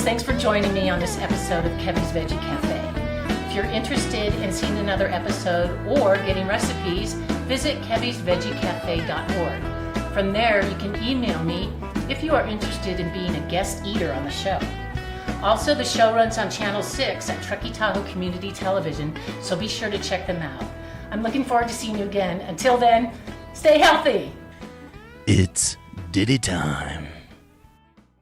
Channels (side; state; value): both; identical; correlation 1.00